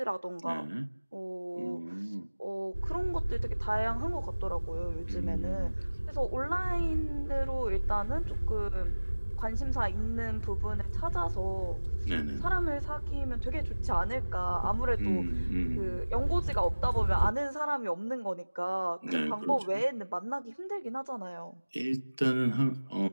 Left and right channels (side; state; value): both; inverted; correlation -1.00